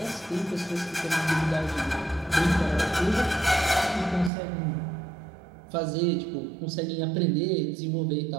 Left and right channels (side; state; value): left; drops out; at 4.3 s